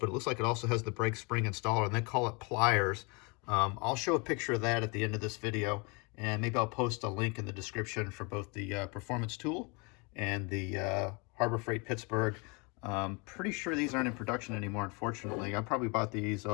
it looks like it also has the brake spring installer, and they call it pliers. I'll show a picture of that at the end of this video, and maybe I'll post a link in the description for both the performance tool and the Harbor Freight Pittsburgh. Pretty sure these aren't in production anymore, unfortunately. I probably bought these,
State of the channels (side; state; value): right; quieter; 30.5 dB